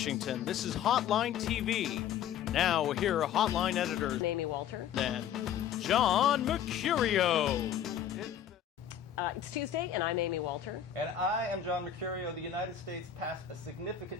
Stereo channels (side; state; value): right; quieter; 9.4 dB